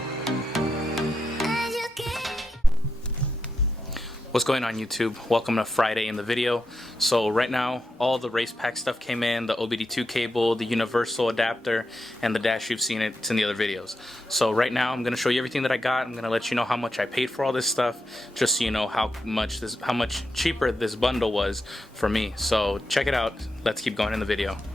What's going on, YouTube? Welcome to Friday in the video. So right now all the RacePac stuff came in, the OBD2 cable, the universal adapter, and the dash. You've seen it, it's in the other videos. So right now I'm going to show you everything that I got. I'm going to let you know how much I paid for all this stuff, just so you know how much cheaper this bundle was for me. So check it out. Let's keep going in the video.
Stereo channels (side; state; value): both; normal; correlation 0.86